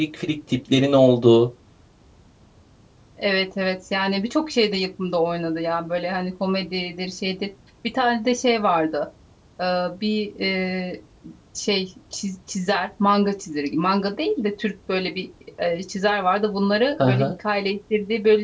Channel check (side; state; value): both; identical; correlation 1.00